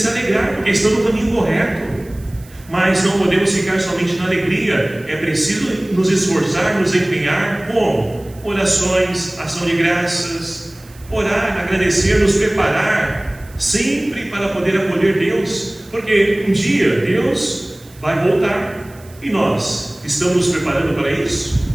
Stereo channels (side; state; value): right; noise; hiss, 25 dB below the sound